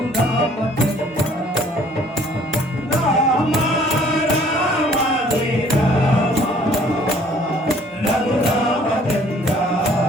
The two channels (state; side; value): normal; both; correlation 0.57